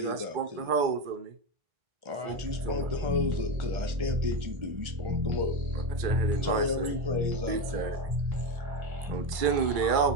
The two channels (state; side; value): late; left; 2.2 ms